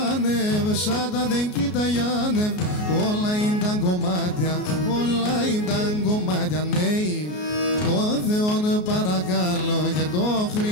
σάτα δεν κοιταγιάνευ, όλα ήταν κομμάτια, όλα ήταν κομμάτια. Ναι, το Θεόν παρακαλώ και το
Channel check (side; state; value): right; late; 33 ms